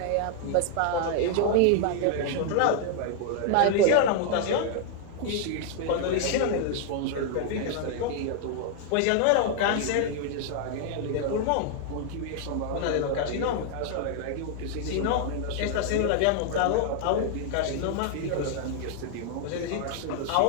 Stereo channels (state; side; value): different; both; correlation 0.00